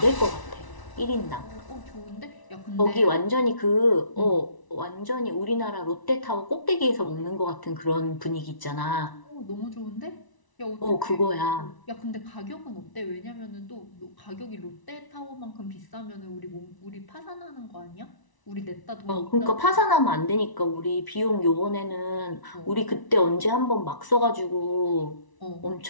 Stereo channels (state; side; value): late; right; 1.0 ms